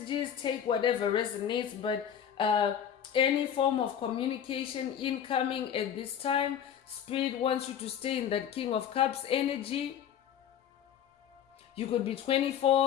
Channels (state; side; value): quieter; right; 9.0 dB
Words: Take whatever resonates, but any form of communication incoming at this time. Spirit wants you to stay in that King of Cups energy. You could be